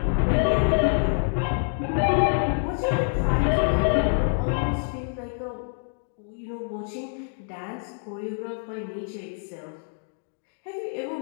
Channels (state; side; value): silent; right; digital silence